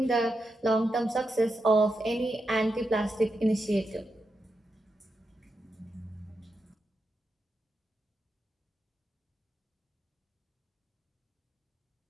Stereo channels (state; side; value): normal; both; correlation 0.86